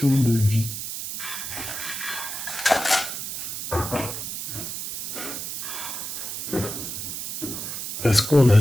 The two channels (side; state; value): right; noise; hiss, 5 dB below the sound